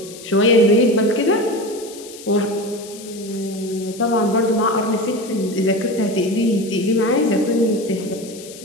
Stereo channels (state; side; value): noise; left; hiss, 17 dB below the sound